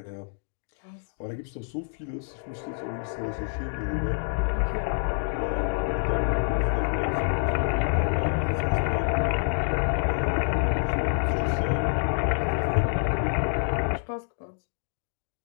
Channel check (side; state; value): right; silent; digital silence